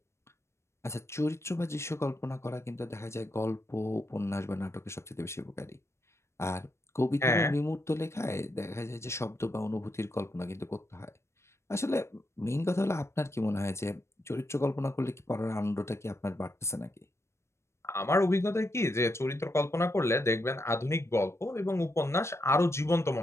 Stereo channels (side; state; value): right; late; 0.13 ms